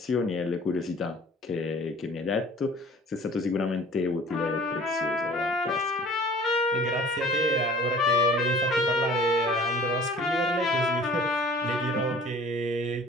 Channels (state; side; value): normal; both; correlation 0.47